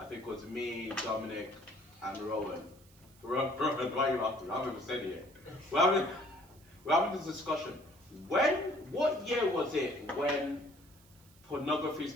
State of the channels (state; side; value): noise; right; hiss, 27 dB below the sound